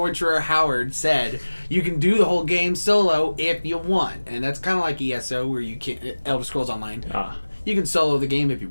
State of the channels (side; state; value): both; inverted; correlation -1.00